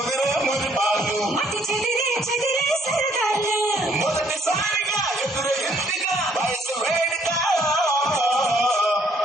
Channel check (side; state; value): both; normal; correlation 0.65